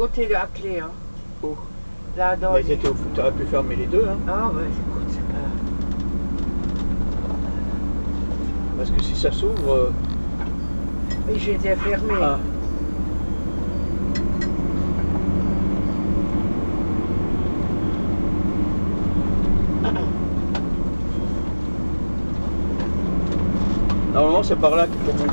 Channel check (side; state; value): both; inverted; correlation -1.00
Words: de la clé. Hein. Oh. Là, dans Mais t'aurais pu fermer les deux. Hein. Ah ouais, écoute, c'est pas... Parce que si ça s'ouvre... Oui, j'étais fermé. Ah. Normalement c'est par là qu'il faut